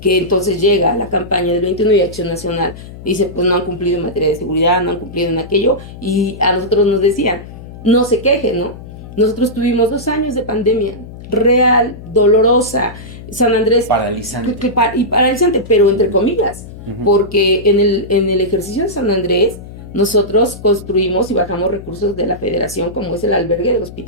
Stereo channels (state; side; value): noise; left; hum, 15 dB below the sound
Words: entonces llega la campaña del 21 de Acción Nacional, dice, pues no han cumplido en materia de seguridad, no han cumplido en aquello, y a nosotros nos decían, no se quejen, ¿no? Nosotros tuvimos 2 años de pandemia real, dolorosa, San Andrés paralizante y paralizante, pero entre comillas, porque en el ejercicio de San Andrés nosotros construimos y bajamos recursos de la federación, como es el albergue del